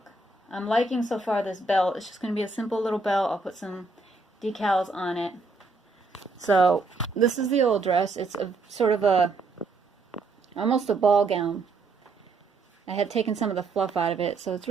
I'm liking so far this belt. It's just going to be a simple little belt. I'll put some decals on it. So this is the old dress. It's a sort of almost a ball gown. I had taken some of the fluff out of it, so it's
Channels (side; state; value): left; quieter; 3.7 dB